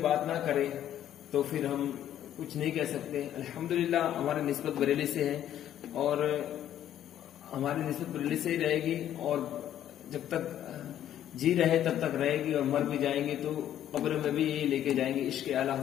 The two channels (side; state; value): right; quieter; 11.2 dB